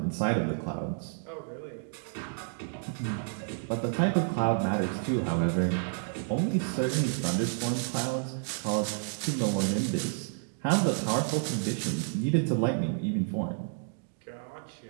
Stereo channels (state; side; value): silent; left; 58 dB below the other